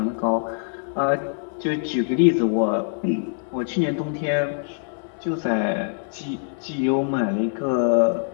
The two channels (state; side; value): silent; right; 63 dB below the other